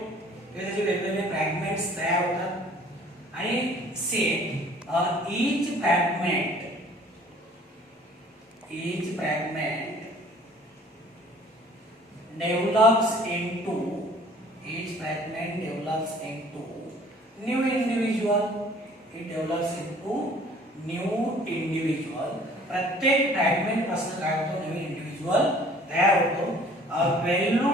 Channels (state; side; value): normal; both; correlation 0.53